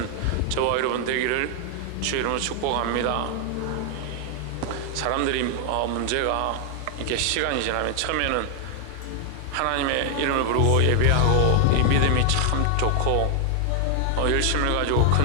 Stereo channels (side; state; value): both; different; correlation 0.00